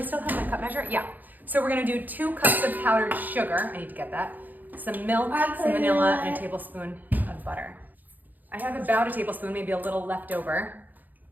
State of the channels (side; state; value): left; late; 0.084 ms